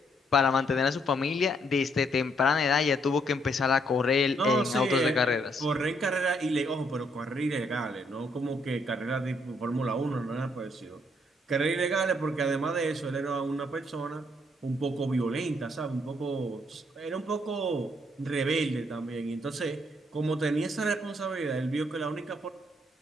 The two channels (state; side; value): normal; both; correlation 0.71